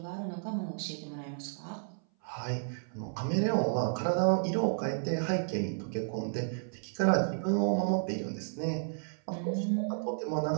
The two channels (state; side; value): silent; left; 56 dB below the other